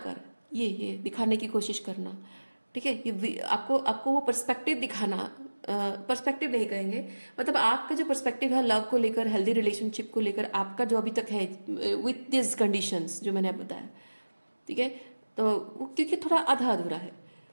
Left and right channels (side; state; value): both; inverted; correlation -1.00